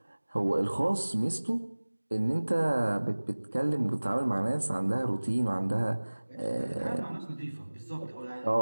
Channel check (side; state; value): both; inverted; correlation -1.00